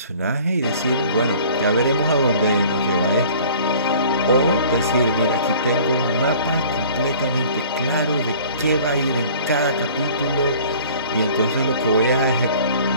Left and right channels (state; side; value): inverted; both; correlation -0.49